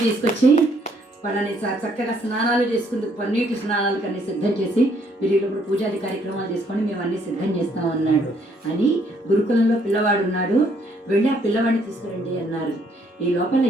తీసుకొచ్చి వాళ్ళని చక్కగా స్నానాలు చేసుకుందుకు పన్నీటి స్నానాలు కన్నీ సిద్ధం చేసి, మీరు ఇప్పుడు పూజాది కార్యక్రమాలు చేసుకొని మేము అన్నీ సిద్ధం చేస్తాం అన్నాడు. అని గురుకులంలో పిల్లవాడు ఉన్నాడు, వెళ్ళి ఆ పిల్లవాడిని తీసుకురండి అన్నారు. ఈ లోపల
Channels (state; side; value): normal; both; correlation 0.67